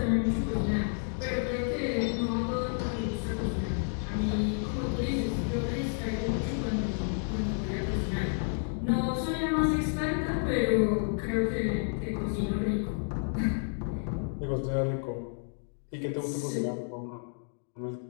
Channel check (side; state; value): right; silent; 57 dB below the other